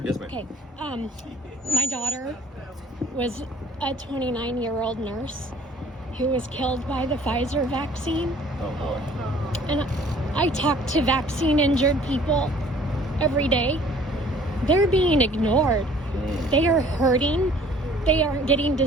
Yes, ma'am. Okay. My daughter was a 29-year-old nurse who was killed by the Pfizer vaccine. Oh, boy. And I talk to vaccine-injured people every day. They're being ignored. They are hurting. They aren't getting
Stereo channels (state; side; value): normal; both; correlation 0.54